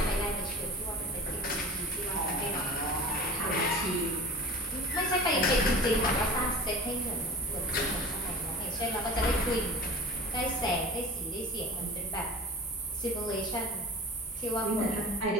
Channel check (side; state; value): both; normal; correlation 0.38